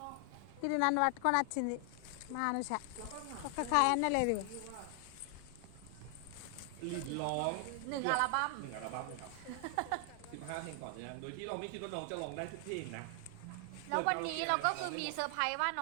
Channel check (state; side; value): different; both; correlation 0.00